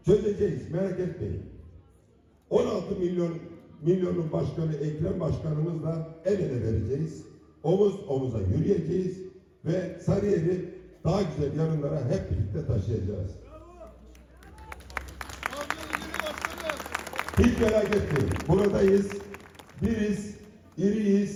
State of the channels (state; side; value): identical; both; correlation 1.00